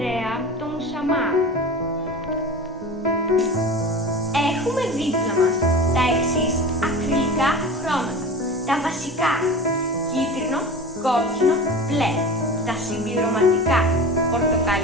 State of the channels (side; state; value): both; normal; correlation 0.33